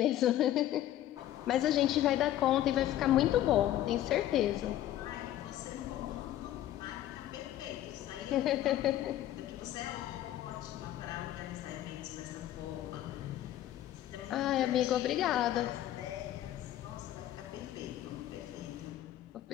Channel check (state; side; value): quieter; right; 12.9 dB